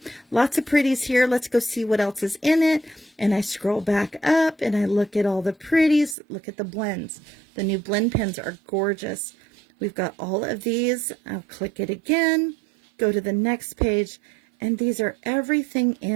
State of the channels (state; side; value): drops out; left; at 6.2 s